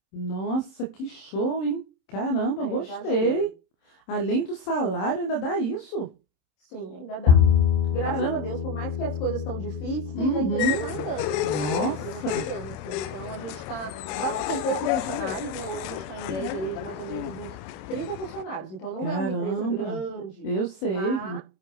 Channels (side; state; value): right; late; 27 ms